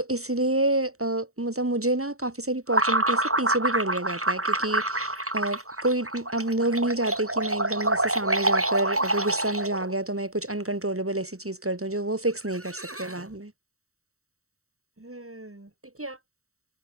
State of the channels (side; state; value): left; late; 0.64 ms